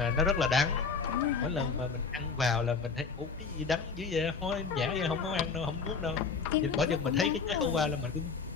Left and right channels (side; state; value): right; quieter; 5.1 dB